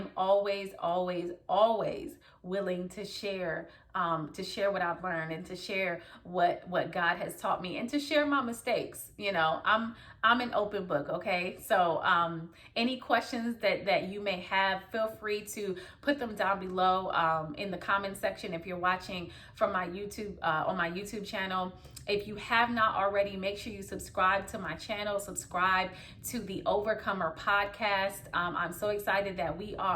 always, always, always willing to share what I've learned, and to share what God has taught me, and to share my mistakes. I'm an open book. Okay. So, any questions that you may have, feel free to put them down below, in the comment section. If you're watching from my YouTube, on my YouTube channel, if you have not already, make sure you subscribe to my channel, subscribe to the Overcomer podcast. I'm so excited that we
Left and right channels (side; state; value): both; identical; correlation 1.00